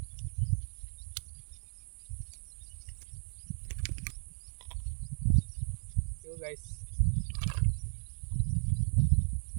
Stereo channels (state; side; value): silent; left; 54 dB below the other